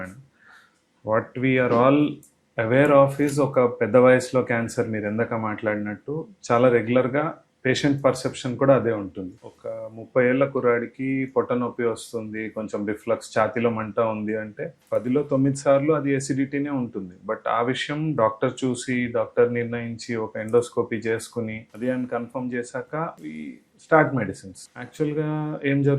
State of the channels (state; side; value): identical; both; correlation 1.00